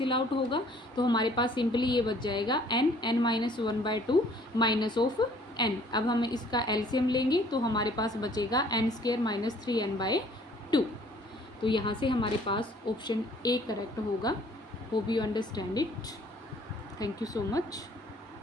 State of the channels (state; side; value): normal; both; correlation 0.57